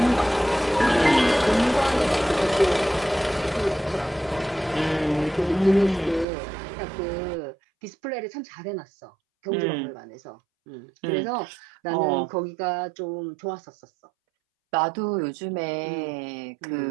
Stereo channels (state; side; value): drops out; left; at 6.2 s